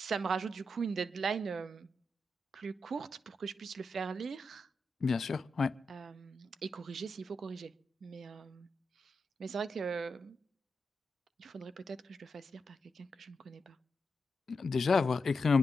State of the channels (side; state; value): both; normal; correlation 0.87